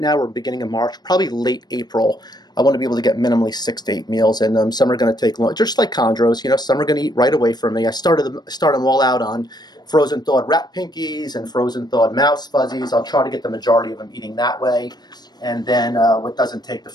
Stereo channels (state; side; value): late; right; 0.20 ms